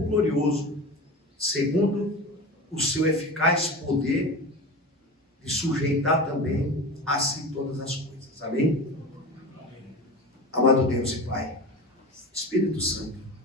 glorioso, segundo o seu eficaz poder, de sujeitar também a si todas as coisas. Amém? Amado Deus e Pai, Espírito Santo,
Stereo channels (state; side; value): normal; both; correlation 0.29